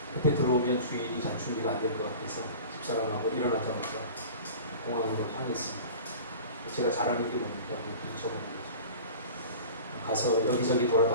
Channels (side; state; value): both; inverted; correlation -0.39